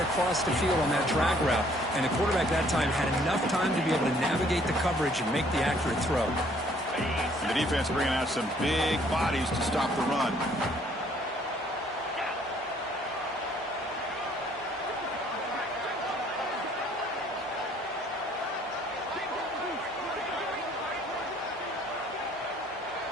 the field on that drag route. And the quarterback that time had enough time to be able to navigate the coverage and make the accurate throw. And the defense bringing out some big bodies to stop the run.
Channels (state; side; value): normal; both; correlation 0.61